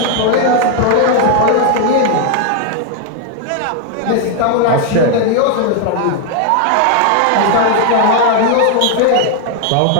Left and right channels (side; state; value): both; different; correlation 0.00